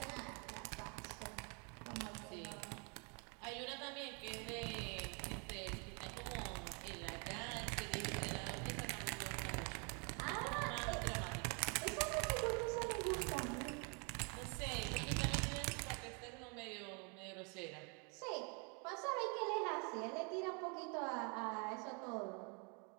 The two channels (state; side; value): quieter; left; 35.2 dB